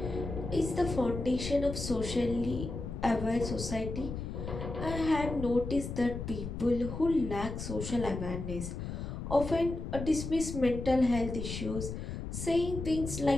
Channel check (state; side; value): noise; left; rumble, 6 dB below the sound